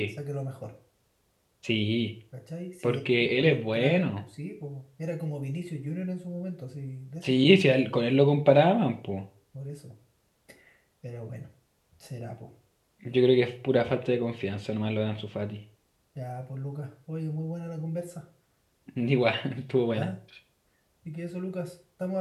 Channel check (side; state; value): both; identical; correlation 1.00